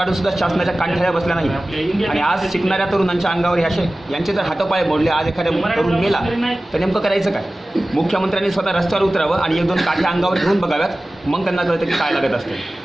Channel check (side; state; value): both; normal; correlation 0.97